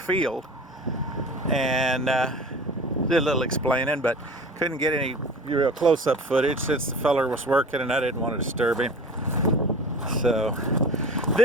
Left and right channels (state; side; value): normal; both; correlation 0.38